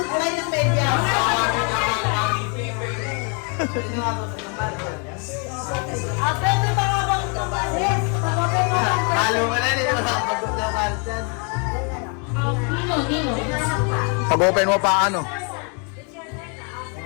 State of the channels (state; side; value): quieter; right; 37.2 dB